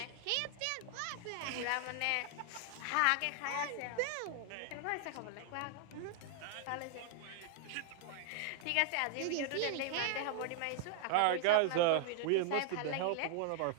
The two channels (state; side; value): different; both; correlation 0.00